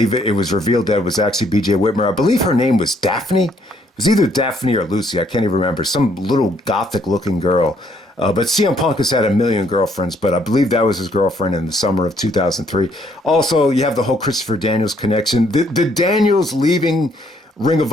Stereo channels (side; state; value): both; normal; correlation 0.67